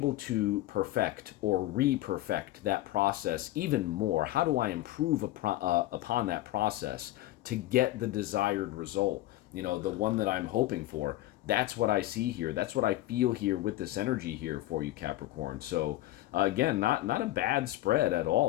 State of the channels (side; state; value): right; quieter; 15.9 dB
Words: to perfect or re-perfect that process even more? How do I improve upon that process to get the desired result? The one that I'm hoping for. That's what I see here. That's what I feel here with this energy here for you, Capricorn. So again, not a bad spread at